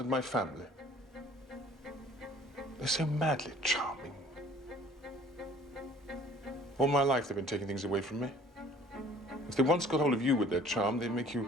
my family. They're so madly charming. All my life they've been taking things away from me. If they once got hold of you with their charm, they'd make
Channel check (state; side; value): normal; both; correlation 0.53